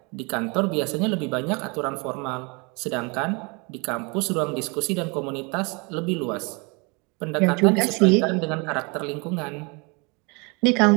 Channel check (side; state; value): left; quieter; 30.1 dB